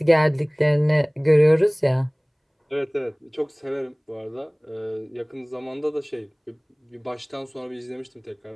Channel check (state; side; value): identical; both; correlation 1.00